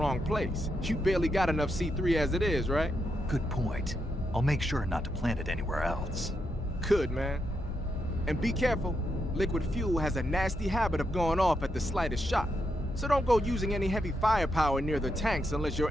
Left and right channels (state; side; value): normal; both; correlation 0.82